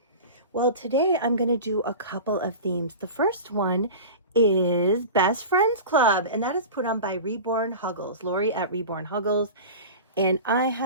Well, today I'm going to do a couple of themes. The first one is Best Friends Club, and that is put on by Reborn Huggles, Lori at Reborn Huggles. And I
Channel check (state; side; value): inverted; both; correlation -0.33